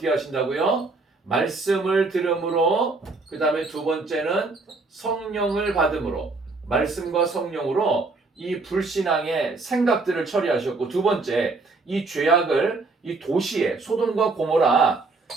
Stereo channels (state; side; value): quieter; left; 3.7 dB